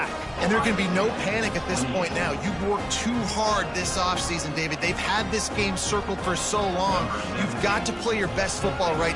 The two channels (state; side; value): identical; both; correlation 1.00